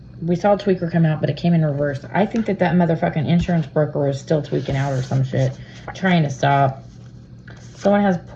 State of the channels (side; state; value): both; identical; correlation 1.00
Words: We saw a tweaker come out, but it came in reverse. I think that motherfucking insurance broker is still tweaking out or some shit. Trying to stop. Someone has